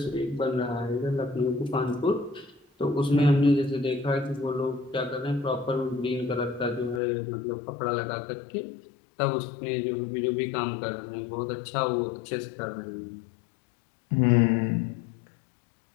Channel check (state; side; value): drops out; right; at 7.0 s